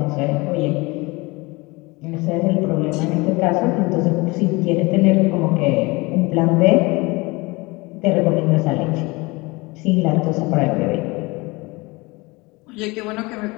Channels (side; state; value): right; quieter; 24.5 dB